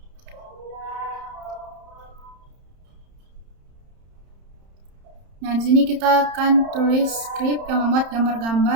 Nah, di sini kita akan tulis script yang membuat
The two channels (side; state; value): left; late; 31 ms